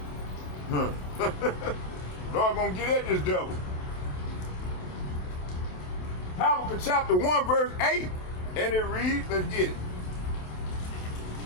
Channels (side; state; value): right; late; 27 ms